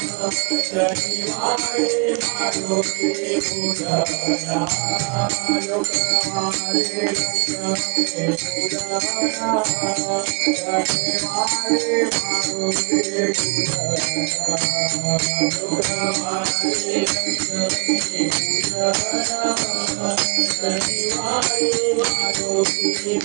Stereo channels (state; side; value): quieter; left; 32.2 dB